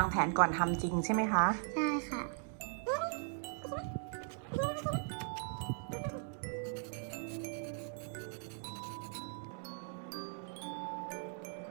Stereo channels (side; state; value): left; silent; 52 dB below the other